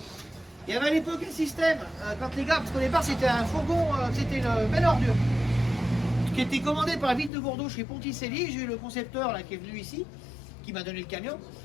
Il y avait à l'époque un système, quand les gars, parce qu'au départ c'était un fourgon, c'était une belle ordure, qui était commandé par la ville de Bordeaux chez Ponticelli. J'ai eu le concepteur là, qui est venu ici, qui m'a donné le camion.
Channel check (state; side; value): drops out; right; at 7.3 s